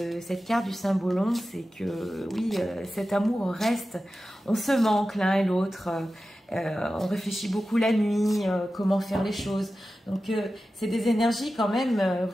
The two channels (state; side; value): normal; both; correlation 0.93